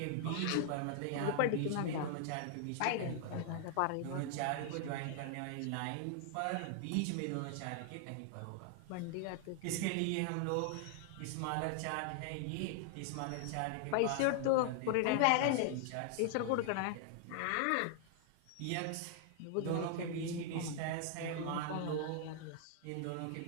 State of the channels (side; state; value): both; different; correlation 0.00